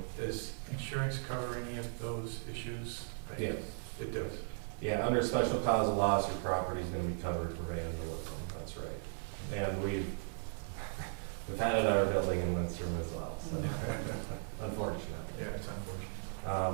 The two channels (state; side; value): silent; left; digital silence